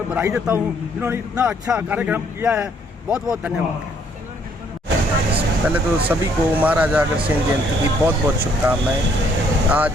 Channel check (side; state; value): both; normal; correlation 0.66